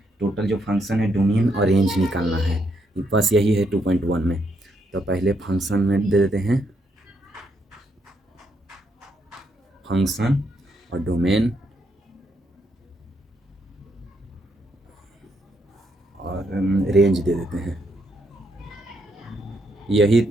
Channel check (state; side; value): normal; both; correlation 0.76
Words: टोटल जो फंक्शन है डोमेन और रेंज निकालना है, बस यही है 2.1 में। तो पहले फंक्शन में दे देते हैं फंक्शन और डोमेन और रेंज दे देते हैं।